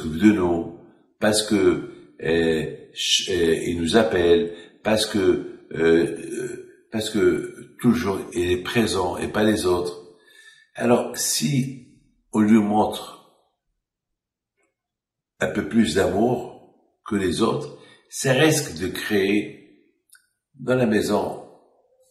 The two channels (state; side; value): identical; both; correlation 1.00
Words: de nous, parce que il nous appelle, parce que toujours il est présent et pas les autres. Alors, si on lui montre un peu plus d'amour que les autres, ça risque de créer dans la maison